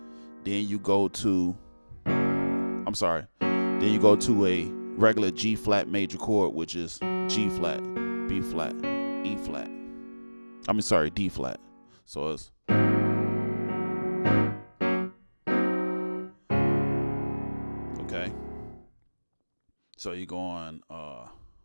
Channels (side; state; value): both; inverted; correlation -1.00